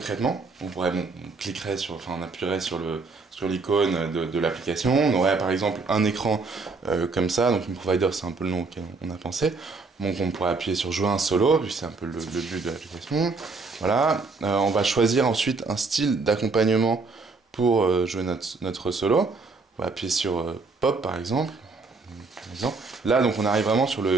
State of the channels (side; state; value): left; quieter; 4.0 dB